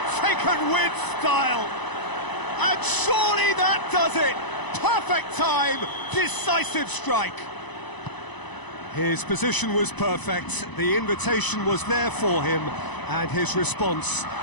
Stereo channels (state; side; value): late; right; 1.0 ms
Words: taken with style. And surely that does it. Perfect time, decisive strike. His position was perfect, the invitation was there for him, and his response